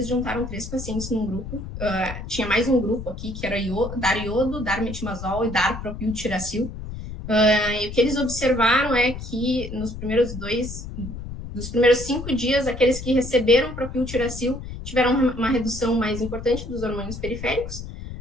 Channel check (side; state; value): left; noise; rumble, 9 dB below the sound